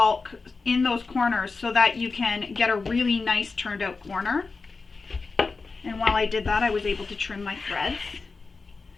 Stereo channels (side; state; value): right; quieter; 4.2 dB